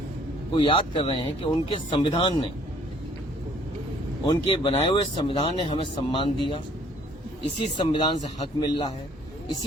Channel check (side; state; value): both; normal; correlation 0.60